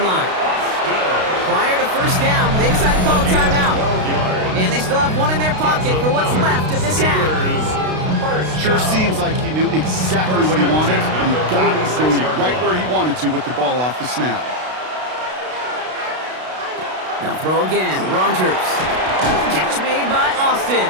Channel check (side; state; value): left; late; 32 ms